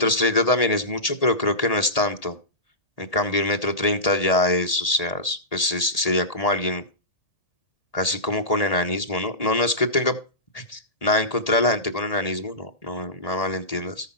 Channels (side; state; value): right; late; 1.8 ms